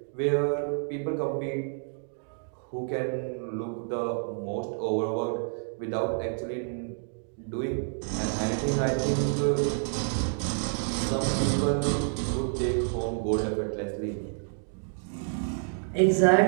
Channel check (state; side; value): silent; left; digital silence